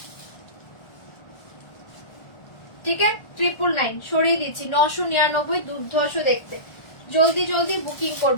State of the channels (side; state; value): right; late; 1.4 ms